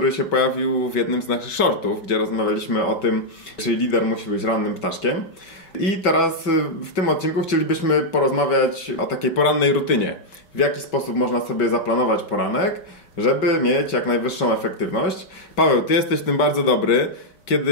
się pojawił w jednym z naszych shortów, gdzie rozmawialiśmy o tym, czy lider musi być rannym ptaszkiem. I teraz w tym odcinku chcielibyśmy porozmawiać o takiej porannej rutynie. W jaki sposób można sobie zaplanować poranek, żeby mieć jak najwyższą efektywność. Paweł, ty jesteś w tym bardzo dobry.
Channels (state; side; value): late; right; 5.2 ms